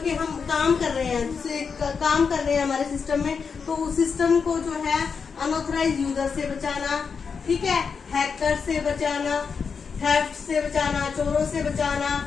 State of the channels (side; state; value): right; quieter; 5.7 dB